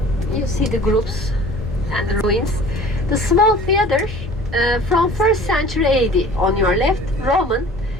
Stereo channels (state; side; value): normal; both; correlation 0.45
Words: You see the groups and the ruins. The small theater from 1st century AD on your left, Roman.